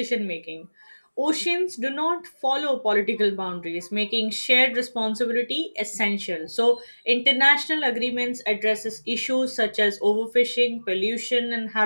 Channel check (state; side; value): inverted; both; correlation -1.00